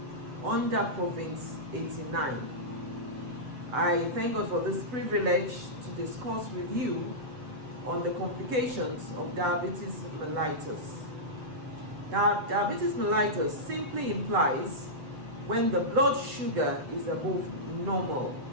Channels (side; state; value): left; late; 7.8 ms